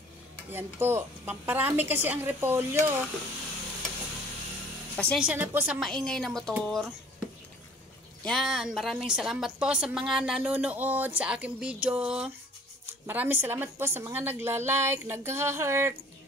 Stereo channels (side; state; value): both; normal; correlation 0.51